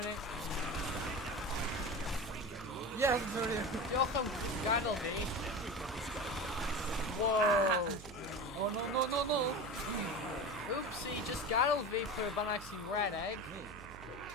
no. Yes, sorry. Y'all come Gandalf me. Whoa. Oh, no, no, no, no. Oopsie, just Gandalf me for a Banaxing red egg.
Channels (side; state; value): right; noise; hum, 15 dB below the sound